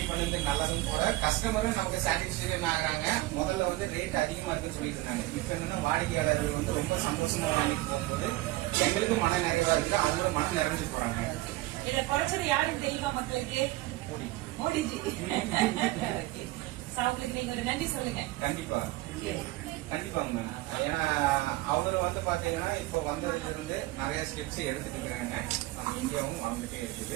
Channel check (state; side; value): quieter; left; 18.7 dB